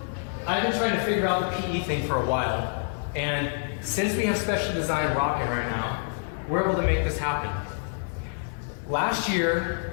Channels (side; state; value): right; silent; digital silence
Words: I've been trying to figure out the PE thing for a while, and since we have special design rocking right now, we're able to make this happen. Last